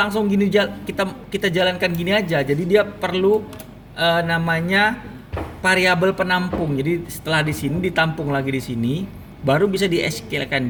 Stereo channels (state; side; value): identical; both; correlation 1.00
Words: gini kita jalankan gini aja. Jadi dia perlu namanya variabel penampung. Jadi setelah di sini ditampung lagi di sini, baru bisa di SQL-kan